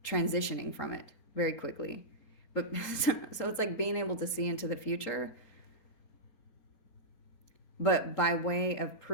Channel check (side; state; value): right; late; 3.8 ms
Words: transitioning from it very quickly. But so it's like being able to see into the future, but by way of